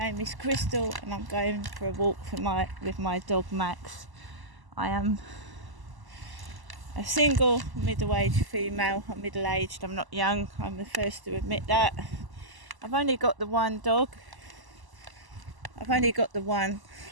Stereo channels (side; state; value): left; late; 1.0 ms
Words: is Crystal and I'm going for a walk with my dog Max. I am a single middle-aged female. I'm middle-aged, I'm not young. I'm the first to admit that. I've only got the one dog. I